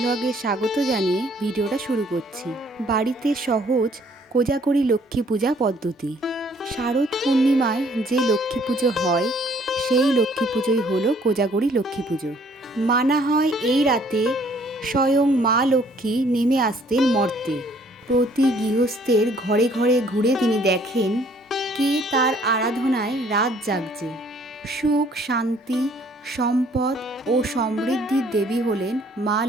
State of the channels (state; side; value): normal; both; correlation 0.61